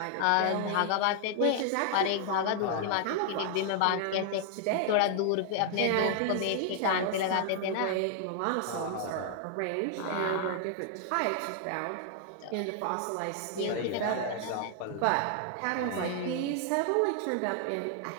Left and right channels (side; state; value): both; different; correlation 0.00